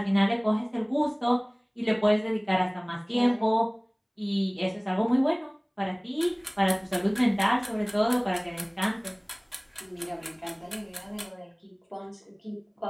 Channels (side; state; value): both; identical; correlation 1.00